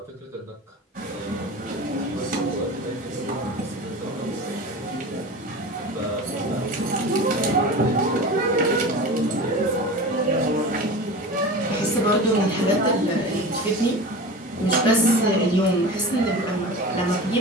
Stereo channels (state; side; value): normal; both; correlation 0.32